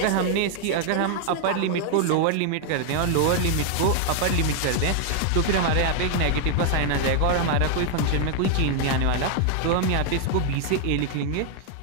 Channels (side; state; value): both; different; correlation 0.00